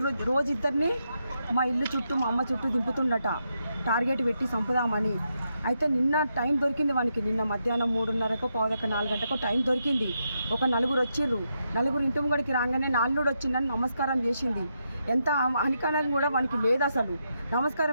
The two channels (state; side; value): inverted; both; correlation -0.82